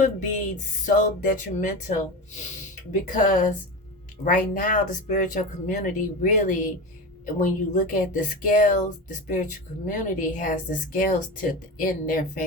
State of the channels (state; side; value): normal; both; correlation 0.25